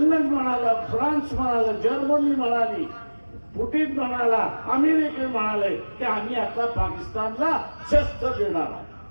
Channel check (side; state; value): both; inverted; correlation -1.00